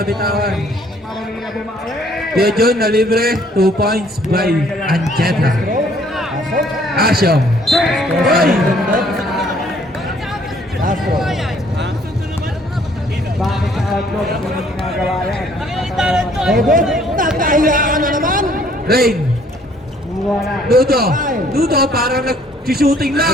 Kuya Jun na libre. 2 points by Ancheta. Pasok. Asyo. Uy. Castro. Bakit sa outlook hindi ginagawa yan? Robert. Nakahiyaan na naman. Rain. Wala. Nudo. Nudo, parang nag-shooting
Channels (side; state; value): both; normal; correlation 0.61